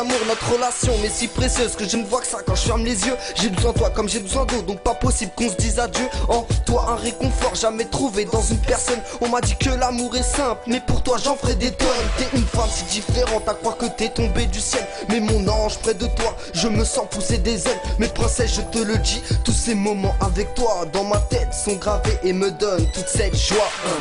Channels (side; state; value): both; identical; correlation 1.00